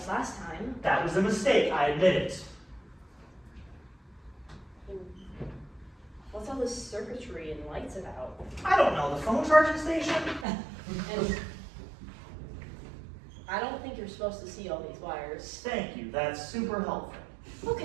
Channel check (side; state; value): left; drops out; at 10.5 s